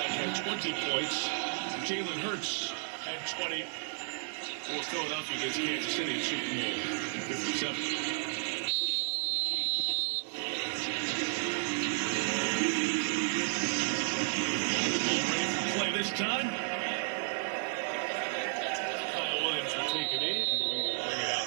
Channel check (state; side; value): silent; left; 56 dB below the other